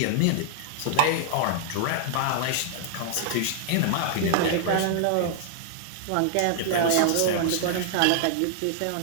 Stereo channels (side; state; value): both; different; correlation -0.01